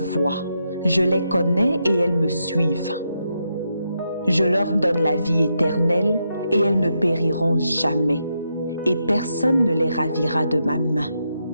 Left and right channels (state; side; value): inverted; both; correlation -0.83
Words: je les connais et elles me suivent. Je leur donne la vie éternelle et elles ne périront jamais, et personne ne les ravira de ma main.